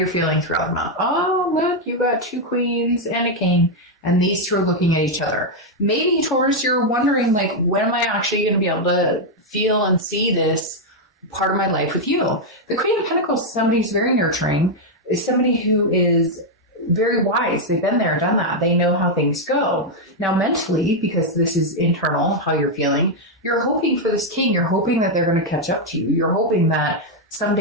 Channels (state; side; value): normal; both; correlation 0.00